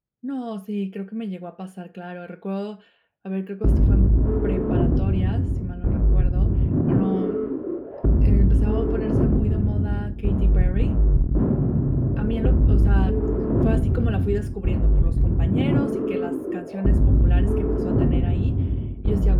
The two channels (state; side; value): identical; both; correlation 1.00